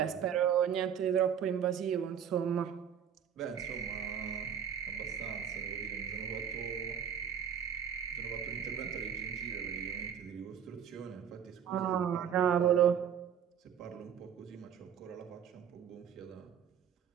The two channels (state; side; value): quieter; left; 8.4 dB